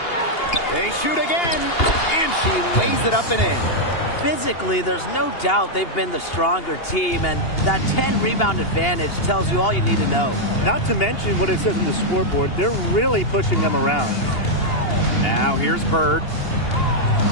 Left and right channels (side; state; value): right; late; 2.8 ms